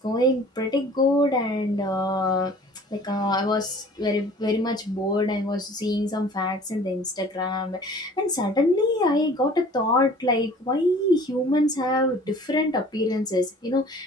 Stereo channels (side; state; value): both; normal; correlation 0.48